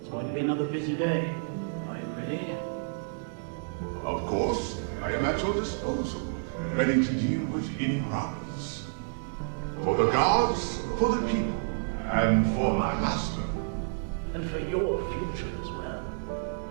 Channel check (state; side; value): silent; left; digital silence